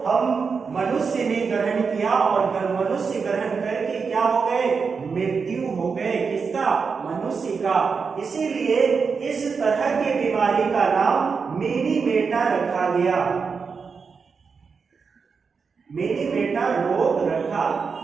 हम मनुष्य ने ग्रहण किया, और मनुष्य ग्रहण करके क्या हो गए? मृत्यु हो गए। किसका? मनुष्य का। इसीलिए इस तरह की बीमारी का नाम मिनी मेटा रखा गया, मिनी मेटा रोग रखा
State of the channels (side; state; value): left; quieter; 5.4 dB